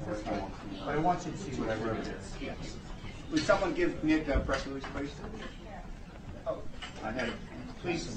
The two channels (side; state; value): both; identical; correlation 1.00